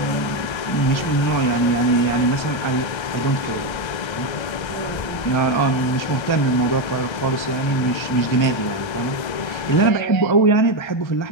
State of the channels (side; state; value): right; late; 1.3 ms